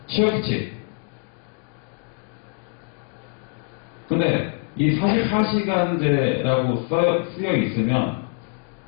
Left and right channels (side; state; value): right; quieter; 40.0 dB